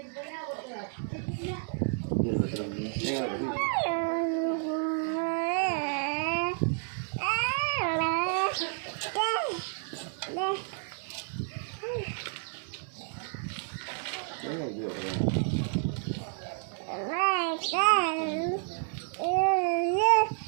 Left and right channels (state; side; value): silent; left; 57 dB below the other